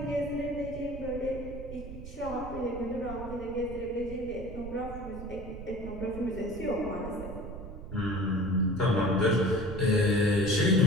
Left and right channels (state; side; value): noise; right; rumble, 11 dB below the sound